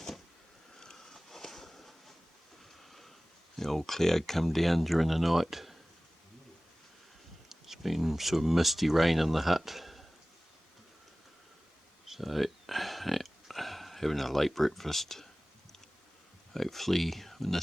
The old cloud come down during the night. It's been sort of misty rain in the hut. So, yeah, having a late breakfast. Hopefully when the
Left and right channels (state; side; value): normal; both; correlation 0.98